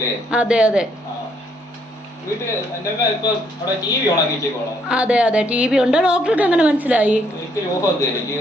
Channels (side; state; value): both; normal; correlation 0.70